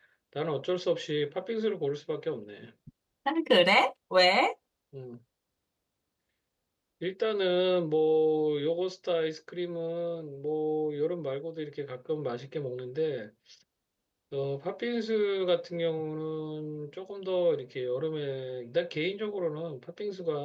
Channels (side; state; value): both; identical; correlation 1.00